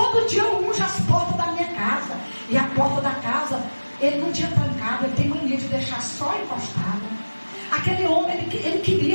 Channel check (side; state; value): both; inverted; correlation -1.00